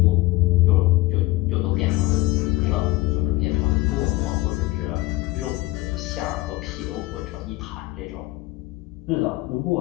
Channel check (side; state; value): right; quieter; 19.4 dB